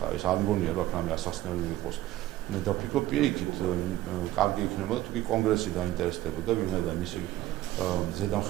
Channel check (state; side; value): quieter; left; 15.0 dB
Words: ეს არ მგონია, რომ აქ რამე ასახსნელი იყოს. და ვფიქრობ, პირიქით, კარგი იქნებოდა, თუ კი კონგრესი დაინტერესდებოდა, ვინაიდან მისი